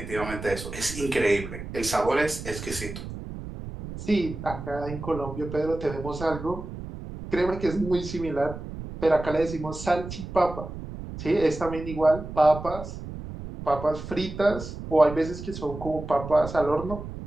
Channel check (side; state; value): right; noise; rumble, 10 dB below the sound